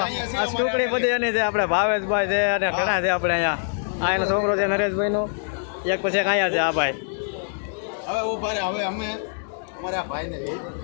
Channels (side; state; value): right; silent; digital silence